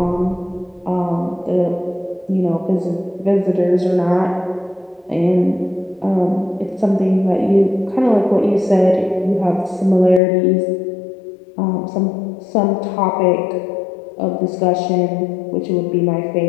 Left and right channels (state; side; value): drops out; right; at 10.2 s